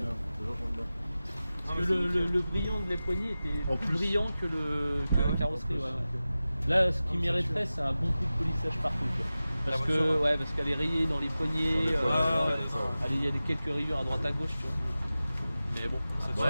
Toujours j'aime bien. Parce que le brillant de les poignées était En plus plus. brillant que la carrosserie. Ouais. Là, ce qui mériterait, c'est un bon coup de polissage partout. Quoi. Parce La que, voiture, ouais, parce qu'elle est rayée dans les poignées. Dans les poignées, Il y a quelques rayures à droite à gauche, tu vois. Mais bon,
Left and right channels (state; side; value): inverted; both; correlation -0.95